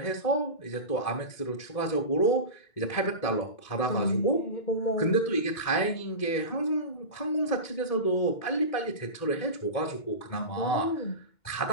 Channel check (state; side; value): late; right; 2.1 ms